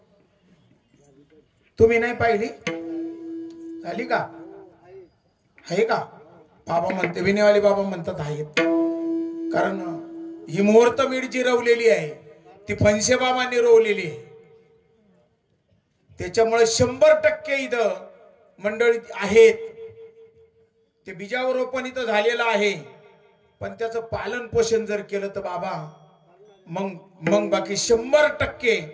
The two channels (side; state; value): both; identical; correlation 1.00